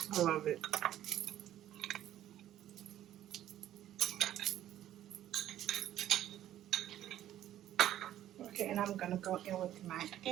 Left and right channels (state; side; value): quieter; left; 12.4 dB